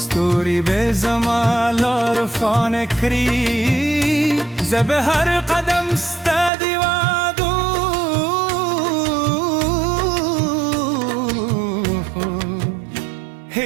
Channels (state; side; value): drops out; left; at 6.5 s